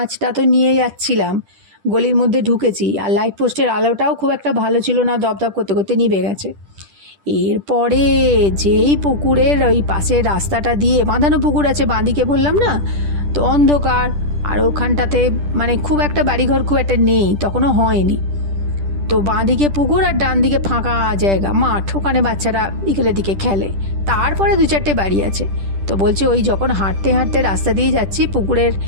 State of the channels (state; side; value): late; left; 10 ms